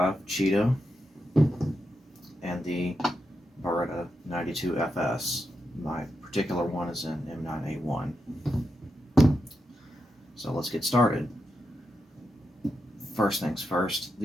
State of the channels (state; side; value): normal; both; correlation 0.86